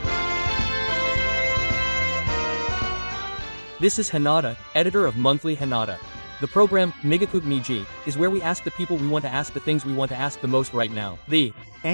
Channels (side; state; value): both; inverted; correlation -1.00